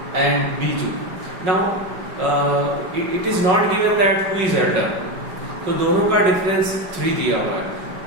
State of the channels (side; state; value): left; late; 5.4 ms